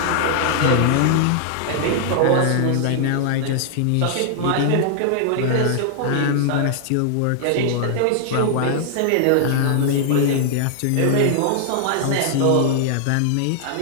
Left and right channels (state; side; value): different; both; correlation 0.00